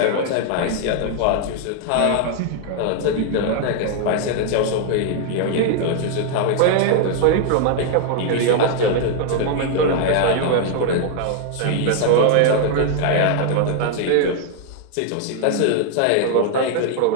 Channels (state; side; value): different; both; correlation 0.00